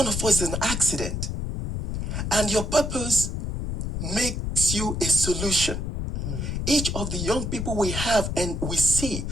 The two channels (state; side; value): noise; left; rumble, 3 dB below the sound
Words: of us is an accident. And your purpose makes you a solution. Each of the young people we have and we see,